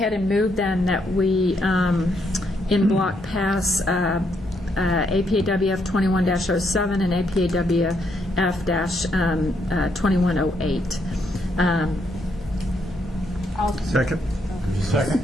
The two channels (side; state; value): both; normal; correlation 0.76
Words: and move then that we, in block, pass APAWF 21-07 and APAWF-2108. Second. Second.